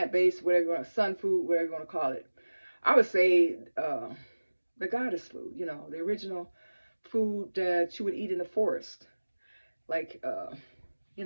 whatever you want, sun food, whatever you want to call it. I would say the goddess food, the original food that you would eat in the forest, like,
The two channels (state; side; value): inverted; both; correlation -1.00